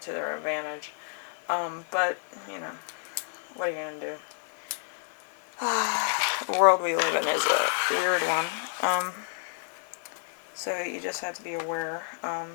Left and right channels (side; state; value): right; silent; digital silence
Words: to their advantage. But, what are you going to do? The world we live in is a weird one. So you just have to be aware.